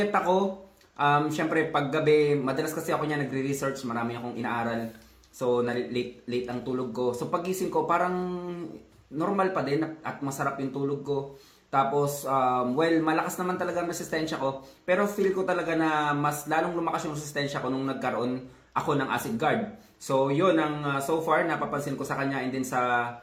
ako, syempre paggabi, madalas kasi ako niya nagre-research, marami akong inaaral. So late ang tulog ko. So pagising ko parang normal pa din at masarap yung tulog ko. Tapos, malakas naman talaga ang resistensya ko. Pero feel ko talaga na mas lalong lumakas yung resistensya ko nung nagkaroon ako ng acid guard. So, yun ang so far napapansin ko sa kanya. And then sa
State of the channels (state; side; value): identical; both; correlation 1.00